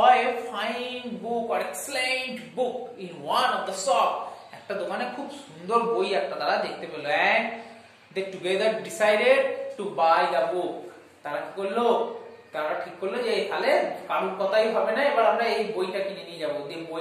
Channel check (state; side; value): identical; both; correlation 1.00